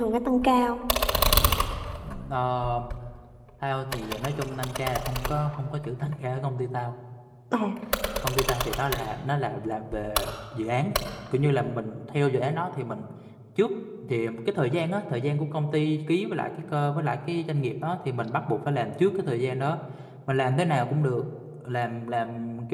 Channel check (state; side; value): identical; both; correlation 1.00